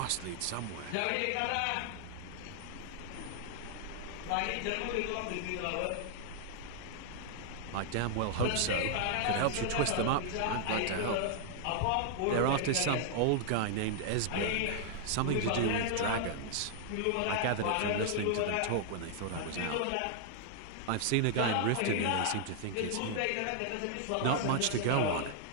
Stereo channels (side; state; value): both; different; correlation 0.00